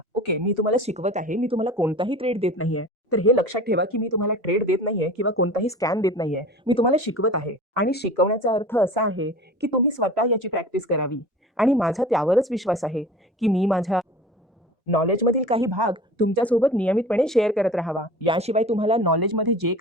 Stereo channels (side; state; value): both; normal; correlation 0.38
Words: ओके, मी तुम्हाला शिकवत आहे. मी तुम्हाला कोणताही ट्रेड देत नाहीये. तर हे लक्षात ठेवा, की मी तुम्हाला ट्रेड देत नाहीये किंवा कोणताही स्कॅम देत नाहीये. मी तुम्हाला शिकवत आहे आणि शिकवण्याचा अर्थ असा आहे, की तुम्ही स्वतः याची प्रॅक्टिस करावी आणि माझा त्यावरच विश्वास आहे, की मी माझ्या नॉलेजमधील काही भाग तुमच्यासोबत नियमितपणे शेअर करत राहावा. याशिवाय तुम्हाला नॉलेजमध्ये जे